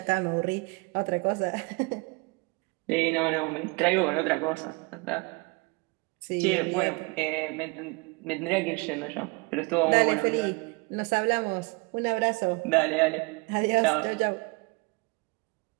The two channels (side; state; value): left; quieter; 27.5 dB